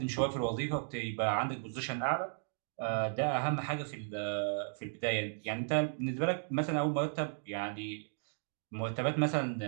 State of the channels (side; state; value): left; silent; digital silence